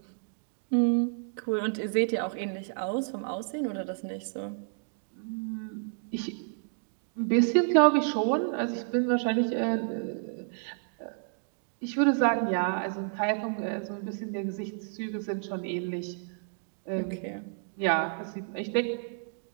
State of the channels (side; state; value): left; silent; digital silence